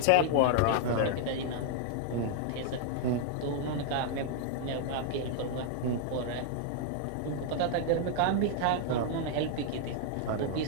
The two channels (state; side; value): different; both; correlation 0.00